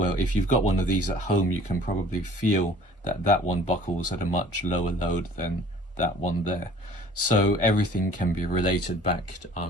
if you've got one of these at home, you can probably feel that that one buckles at a much lower load than that one there. So everything can be related back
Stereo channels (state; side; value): normal; both; correlation 0.51